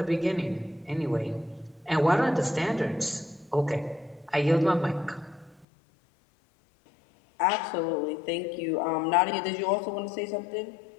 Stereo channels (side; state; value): right; drops out; at 5.7 s